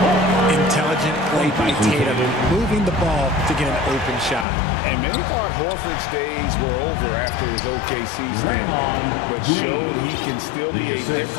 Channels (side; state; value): right; drops out; at 4.5 s